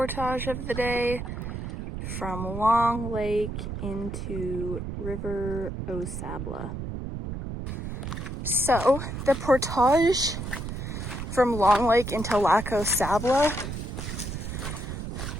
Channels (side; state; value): right; noise; rumble, 6 dB below the sound